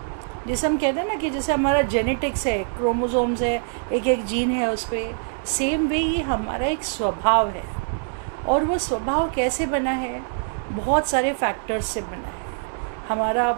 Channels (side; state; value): left; silent; 61 dB below the other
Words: जैसे हम कहते हैं ना कि जैसे हमारा जेनेटिक्स है, क्रोमोसोम्स है, एक एक जीन है उस पर, सेम वे ये हमारा एक स्वभाव है। और वो स्वभाव कैसे बना है? बहुत सारे फैक्टर्स से बना है। हमारा